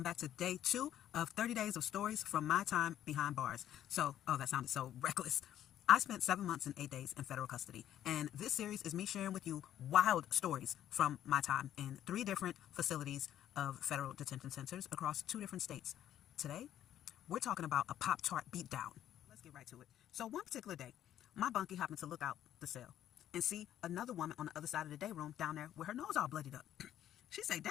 back to day 2 of 30 days of stories from my time behind bars. So, oh, that sounded so reckless. I spent 7 months and 8 days in federal custody, and this series is me sharing with you wild stories from my time in 3 different facilities of federal detention centers across 2 different states. Today, we're talking about a Pop-Tart Beatdown. Let's get right to it. So, one particular day, my bunkie happened to look out the cell and see another woman on the other side of the day room down there with her nose all bloodied up. She say,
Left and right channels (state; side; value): quieter; right; 11.5 dB